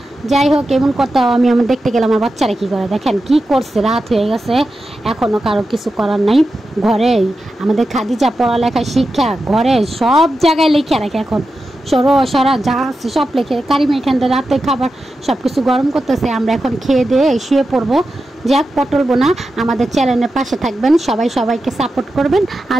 যাই হোক, এমন করতে আমি দেখতে গেলাম আমার বাচ্চারা কী করে, দেখেন কি করছে, রাত হয়ে গেছে, এখনও কারো কিছু করার নাই। ঘরে আমাদের খাদিজা পড়ালেখা শিক্ষা ঘরে সব জায়গায় লিখে রাখে, এখন সরা যা আছে সব লেখে। কারিমা এখান থেকে রাতে খাবার সব কিছু গরম করতেছে, আমরা এখন খেয়ে দিয়ে শুয়ে পড়বো। যাক, পটল বোনা আমাদের চ্যানেলের পাশে থাকবেন, সবাই সবাইকে সাপোর্ট করবেন।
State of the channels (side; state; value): both; normal; correlation 0.90